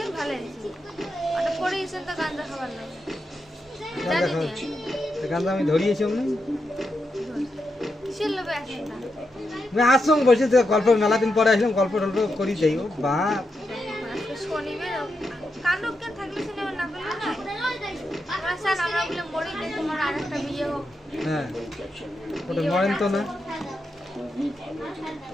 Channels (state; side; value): normal; both; correlation 0.85